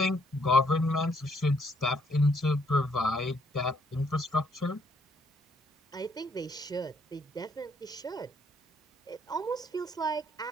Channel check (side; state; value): both; normal; correlation 0.70